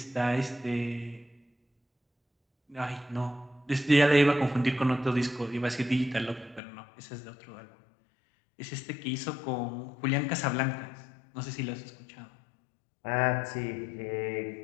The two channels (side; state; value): right; drops out; at 6.6 s